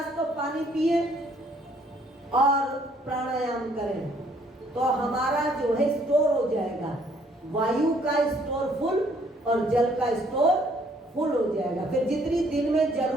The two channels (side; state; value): both; normal; correlation 0.64